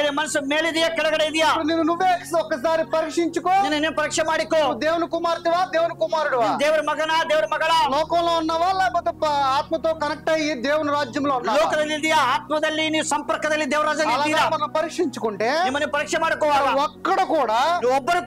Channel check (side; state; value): both; identical; correlation 1.00